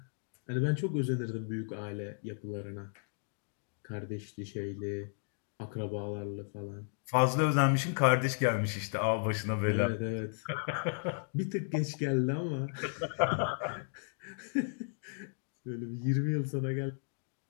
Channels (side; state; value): right; silent; digital silence